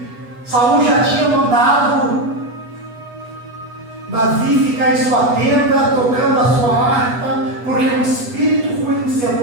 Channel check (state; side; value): late; left; 8.2 ms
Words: Saul já tinha mandado Davi ficar em sua tenda, tocando a sua harpa, porque um espírito ruim se